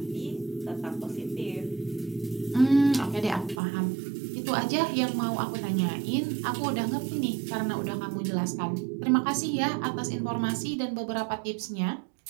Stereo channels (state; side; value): drops out; left; at 3.6 s